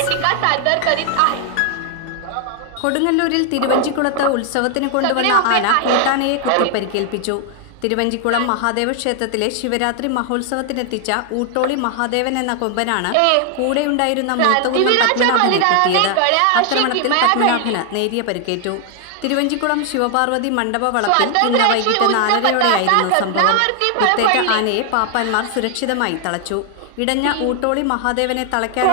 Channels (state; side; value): different; both; correlation 0.00